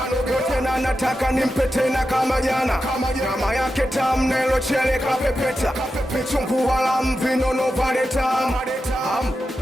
tena nataka nimpe tena kama jana. Nyama yake tamu nelo chele kapepeta, vichungu wala mvinono vale tamu.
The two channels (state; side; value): normal; both; correlation 0.90